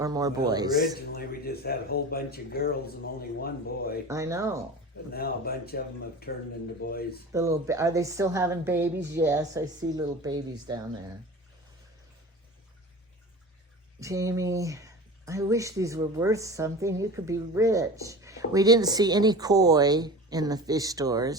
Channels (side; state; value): both; normal; correlation 0.34